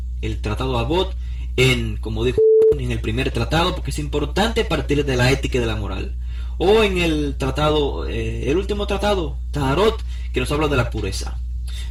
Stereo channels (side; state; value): both; identical; correlation 1.00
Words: el tratado Avot como dijo, en el primer tratado, porque es importante partir de la ética y de la moral. O en el tratado, el último tratado, Taharot, que nos habla de la pureza.